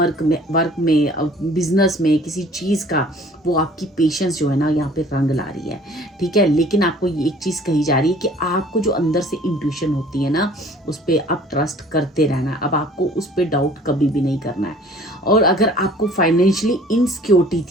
में बिजनेस में, किसी चीज़ का, वो आपकी पेशेंस जो है ना यहाँ पे रंग ला रही है, ठीक है। लेकिन आपको ये एक चीज़ कही जा रही है कि आपको जो अंदर से इंट्यूशन होती है ना, उस पर अब ट्रस्ट करते रहना है। अब आपको उस पर डाउट कभी भी नहीं करना है। और अगर आपको फाइनेंशियली इनसिक्योरिटी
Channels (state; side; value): normal; both; correlation 0.51